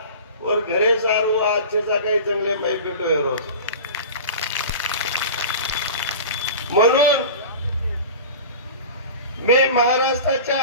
और घरे सार वो अच्छे सा काही चांगले माई पेटो आहे रोज म्हणून मी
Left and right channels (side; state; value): both; inverted; correlation -0.35